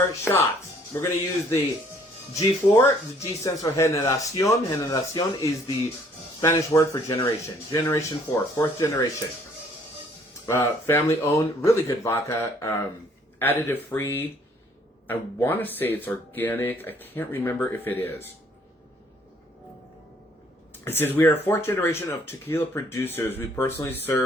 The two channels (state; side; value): normal; both; correlation 0.61